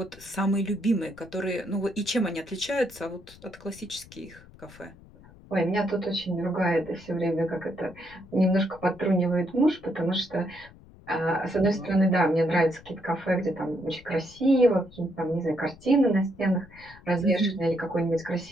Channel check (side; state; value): left; noise; rumble, 22 dB below the sound